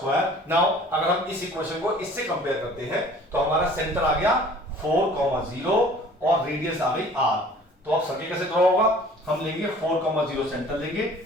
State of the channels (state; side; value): normal; both; correlation 0.49